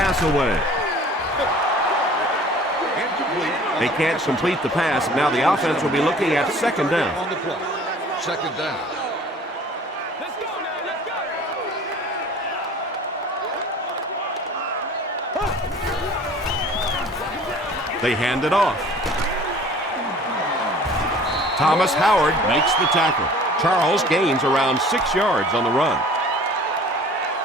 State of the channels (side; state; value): both; normal; correlation 0.48